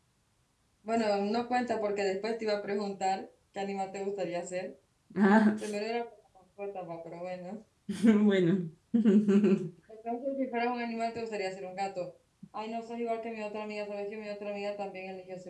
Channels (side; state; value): both; identical; correlation 1.00